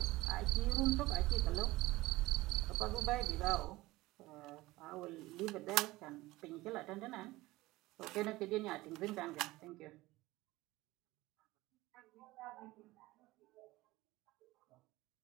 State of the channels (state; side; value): quieter; left; 19.2 dB